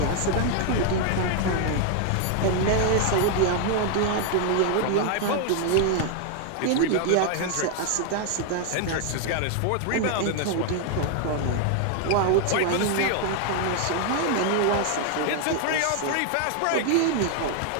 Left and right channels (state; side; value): different; both; correlation 0.00